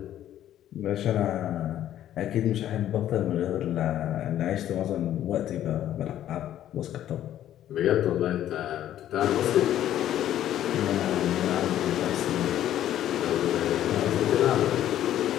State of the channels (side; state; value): right; quieter; 11.8 dB